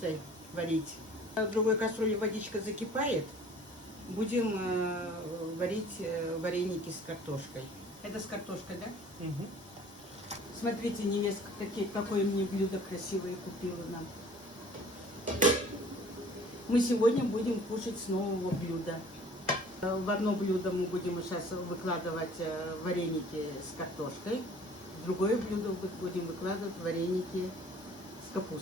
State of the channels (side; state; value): both; normal; correlation 0.51